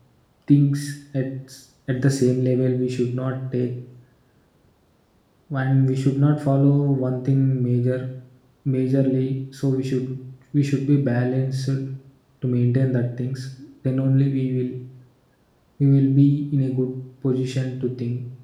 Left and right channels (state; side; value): identical; both; correlation 1.00